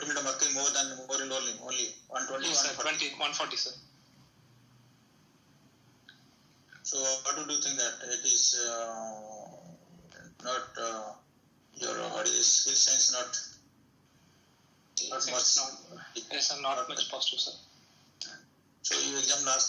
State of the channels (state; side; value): identical; both; correlation 1.00